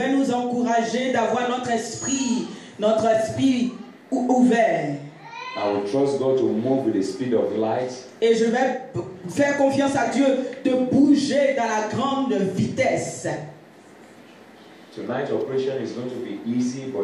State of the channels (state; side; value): identical; both; correlation 1.00